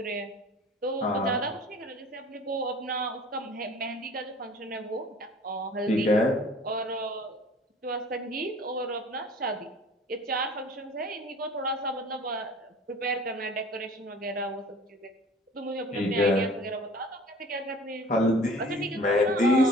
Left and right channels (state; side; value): normal; both; correlation 0.47